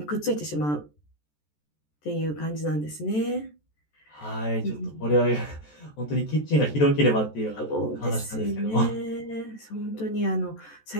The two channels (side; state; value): right; late; 14 ms